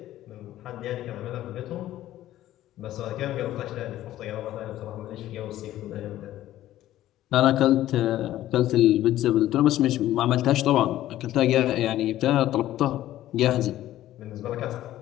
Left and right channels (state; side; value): quieter; right; 13.8 dB